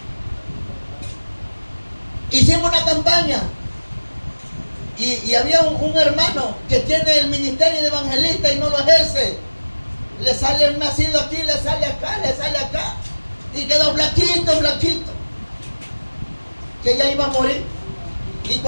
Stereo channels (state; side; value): inverted; both; correlation -1.00